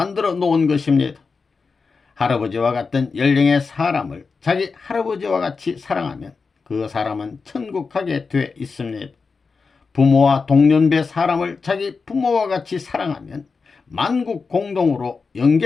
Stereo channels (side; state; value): right; quieter; 4.7 dB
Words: 놓은 것입니다. 할아버지와 같은 연령의 사람을 자기 할아버지와 같이 사랑하면 그 사람은 천국 가게 돼 있습니다. 부모와 동년배 사람을 자기 부모와 같이 사랑하면 만국 공동으로